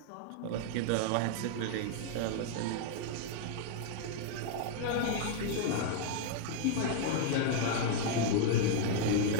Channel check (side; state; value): both; different; correlation 0.00